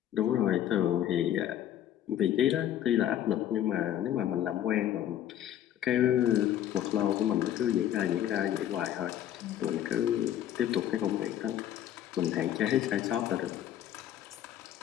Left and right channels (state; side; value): quieter; right; 11.3 dB